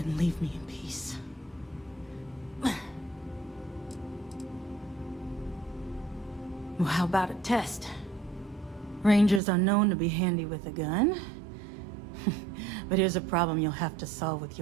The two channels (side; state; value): left; drops out; at 9.4 s